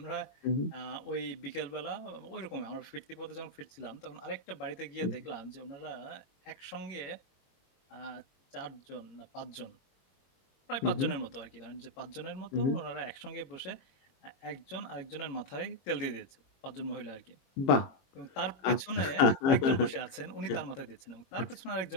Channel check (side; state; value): right; late; 22 ms